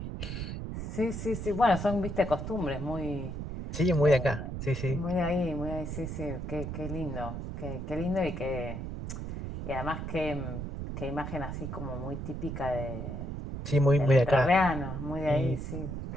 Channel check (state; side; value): noise; right; rumble, 5 dB below the sound